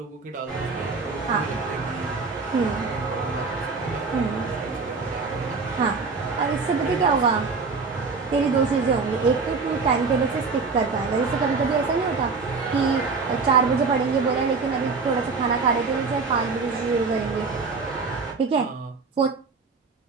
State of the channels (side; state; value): left; quieter; 4.5 dB